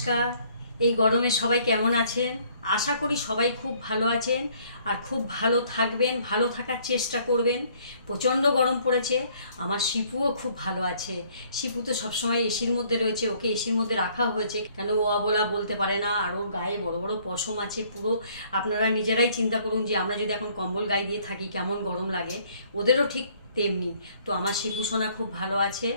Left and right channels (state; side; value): inverted; both; correlation -0.61